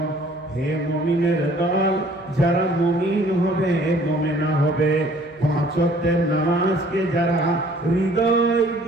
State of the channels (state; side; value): noise; right; hum, 27 dB below the sound